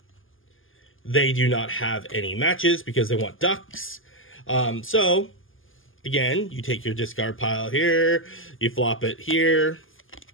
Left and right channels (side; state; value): right; late; 0.59 ms